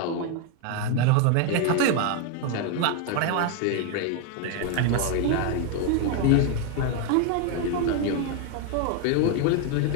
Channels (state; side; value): different; both; correlation 0.01